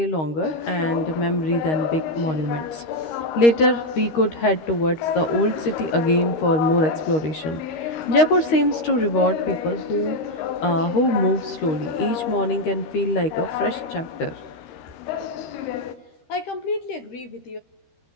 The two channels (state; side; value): late; right; 13 ms